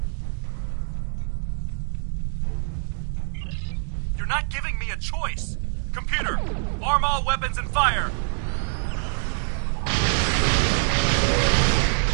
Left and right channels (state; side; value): silent; left; digital silence